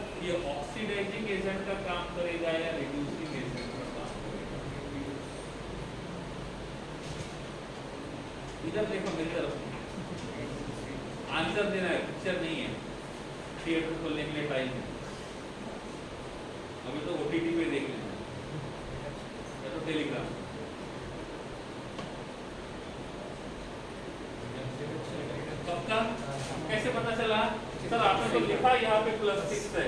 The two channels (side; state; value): both; identical; correlation 1.00